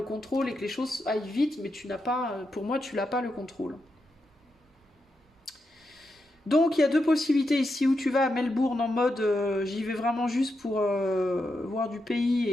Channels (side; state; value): both; normal; correlation 0.85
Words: contrôle et que les choses aillent vite, mais tu n'as pas, pour moi, tu n'as pas le contrôle. Donc, il y a deux possibilités ici, où tu vas à Melbourne en mode j'y vais vraiment juste pour voir du pays,